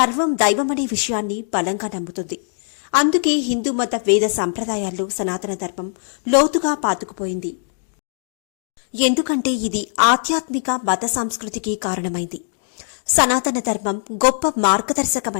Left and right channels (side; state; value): right; silent; 62 dB below the other